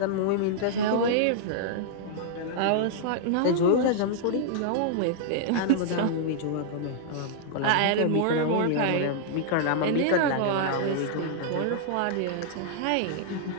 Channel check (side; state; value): both; different; correlation -0.01